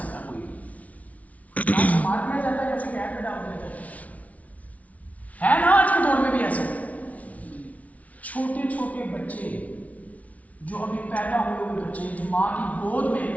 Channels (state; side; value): late; right; 0.069 ms